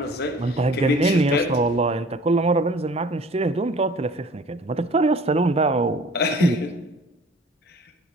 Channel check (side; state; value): both; normal; correlation 0.48